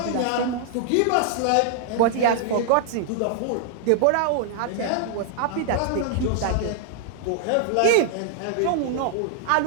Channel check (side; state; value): both; different; correlation -0.01